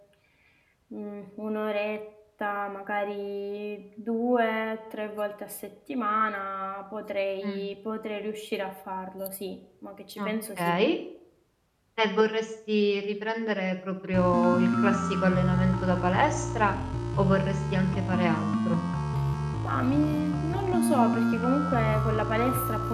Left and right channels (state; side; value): identical; both; correlation 1.00